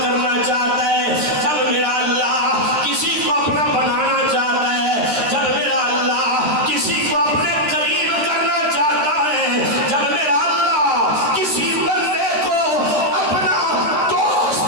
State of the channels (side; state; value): left; late; 13 ms